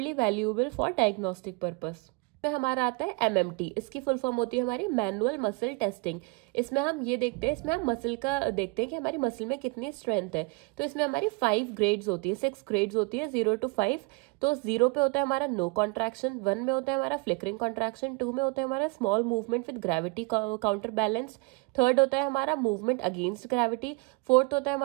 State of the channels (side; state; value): left; quieter; 29.3 dB